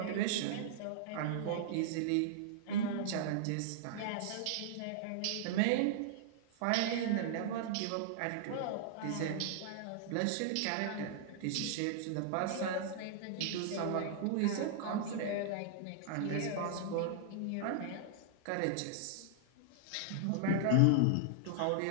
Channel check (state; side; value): different; both; correlation -0.01